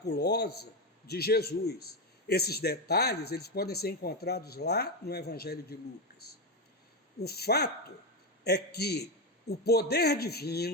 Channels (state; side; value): normal; both; correlation 0.10